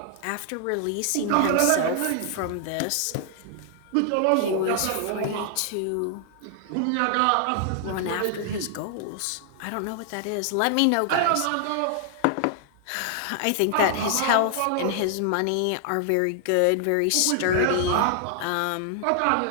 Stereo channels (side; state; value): both; different; correlation 0.00